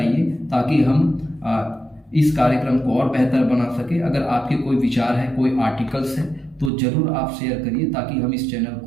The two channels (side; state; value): left; drops out; at 6.7 s